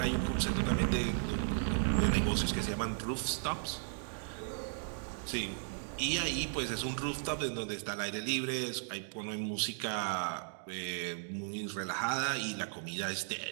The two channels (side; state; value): left; silent; digital silence